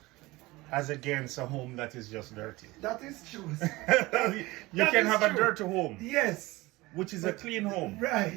as against a home that is just dirty. That is true. You can have a dirty home. Yes. Which is a clean home.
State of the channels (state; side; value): quieter; left; 20.7 dB